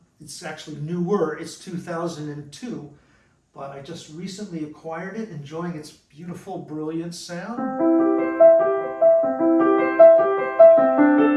actually newer, it's 2002, but I just recently acquired it, enjoying its beautiful, brilliant sound.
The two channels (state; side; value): identical; both; correlation 1.00